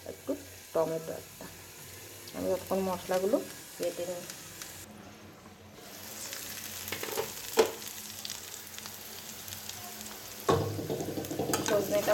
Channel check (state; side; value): identical; both; correlation 1.00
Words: একটু টমেটো একটা। আমি তখন মশলাগুলো বেটে নিই।